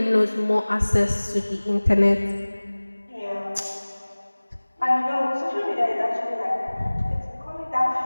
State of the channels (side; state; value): both; inverted; correlation -1.00